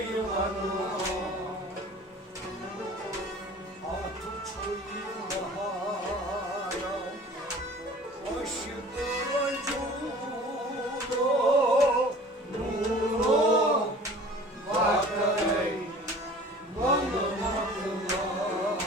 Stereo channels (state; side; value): normal; both; correlation 0.45